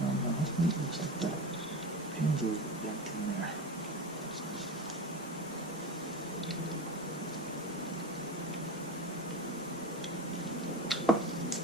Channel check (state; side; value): normal; both; correlation 0.25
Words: it looks like that pin's a little bent in there.